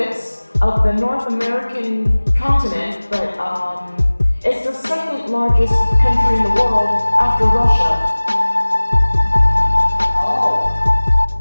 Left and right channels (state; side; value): inverted; both; correlation -1.00